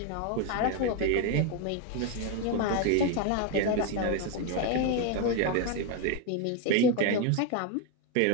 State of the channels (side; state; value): both; different; correlation 0.02